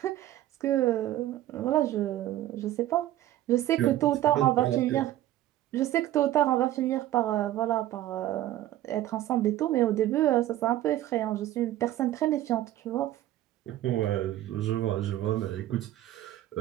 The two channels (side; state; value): left; quieter; 13.9 dB